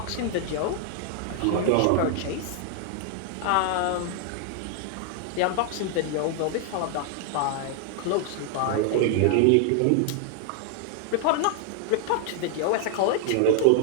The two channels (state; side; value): different; both; correlation 0.00